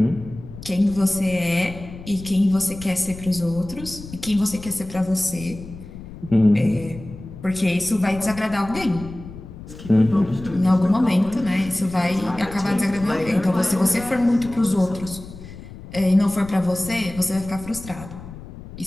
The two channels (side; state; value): left; noise; rumble, 14 dB below the sound